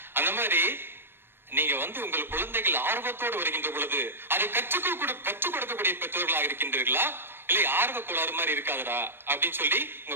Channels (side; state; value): left; late; 0.10 ms